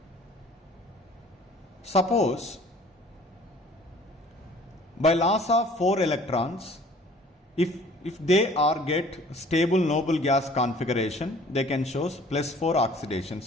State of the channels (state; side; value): normal; both; correlation 0.52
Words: Suppose by loss of 4 electrons, if they are get stable noble gas configuration, they can show +4 oxidation